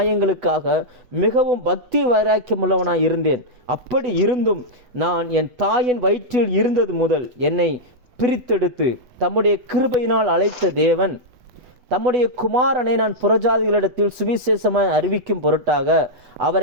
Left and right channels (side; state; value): left; late; 8.1 ms